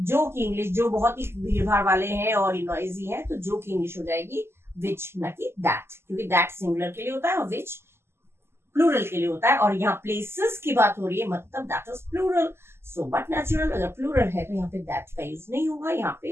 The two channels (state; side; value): late; left; 0.12 ms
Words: जो की इंग्लिश, जो बहुत ही भीड़ भाड़ वाले हैं और नॉइजी हैं, तो जो की इंग्लिश हो जाएगी विच, ना कि दैट, क्योंकि दैट सिंगुलर के लिए होता है और विच प्लूरल के लिए होता है। और यहाँ प्लेसेस की बात हो रही है, मतलब that is plural, so but natural, अगर प्लूरल है तो यहाँ पे दैट का यूज नहीं होगा, यहाँ